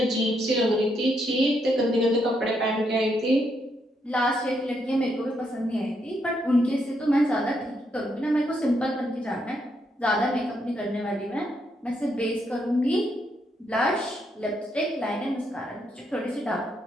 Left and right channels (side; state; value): both; normal; correlation 0.77